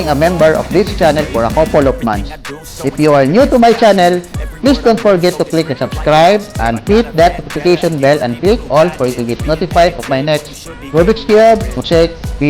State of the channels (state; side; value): identical; both; correlation 1.00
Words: a member of this channel for a couple of months. If you are new to my channel, please don't forget to click the subscribe and hit that notification bell and click all for you to get notified of my next Rubik's Cube mosaic